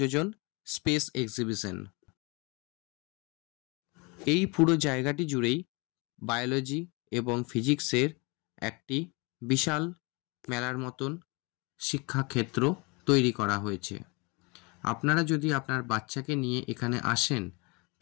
স্পেস এক্সিবিশন। এই পুরো জায়গাটি জুড়েই বায়োলজি এবং ফিজিক্সের একটি বিশাল মেলার মতন শিক্ষাক্ষেত্র তৈরি করা হয়েছে। আপনারা যদি আপনার বাচ্চাকে নিয়ে এখানে আসেন,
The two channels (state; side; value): quieter; right; 29.0 dB